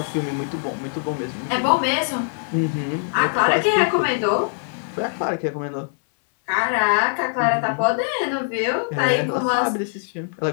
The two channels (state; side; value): silent; right; 64 dB below the other